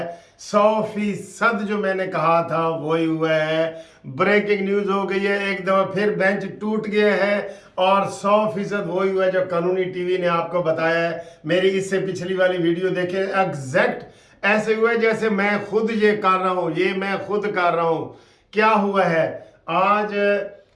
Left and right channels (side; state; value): both; identical; correlation 1.00